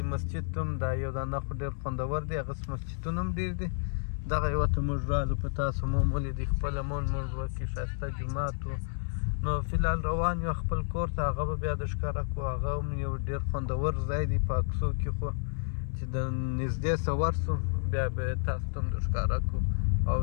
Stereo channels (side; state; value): right; silent; 57 dB below the other